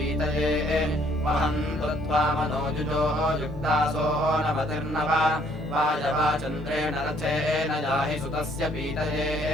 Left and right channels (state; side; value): normal; both; correlation 0.64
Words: वहन्तु त्वामनोजुजो युक्तासो नवतिर्नव वायवाचन्द्रेण रथेन याहि सुतस्य पीतये